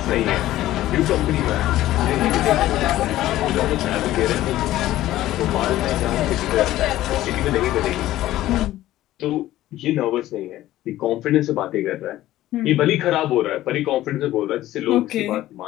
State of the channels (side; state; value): right; quieter; 14.8 dB